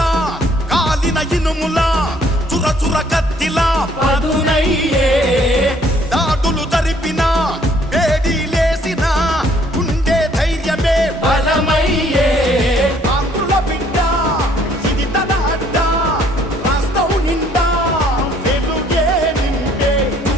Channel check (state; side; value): normal; both; correlation 0.63